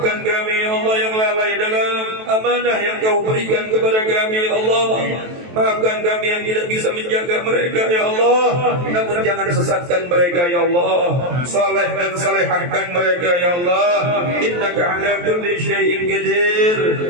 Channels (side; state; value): left; late; 23 ms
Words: kami ya Allah yang lalai dalam amanah yang kau berikan kepada kami ya Allah. Maafkan kami yang tidak bisa menjaga mereka ya Allah. Namun jangan sesatkan mereka ya Allah. Saleh dan salehahkan mereka ya Allah. Innaka ala kulli syai'in qadir